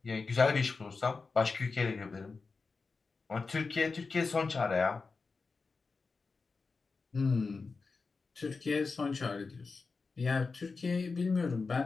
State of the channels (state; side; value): quieter; right; 4.4 dB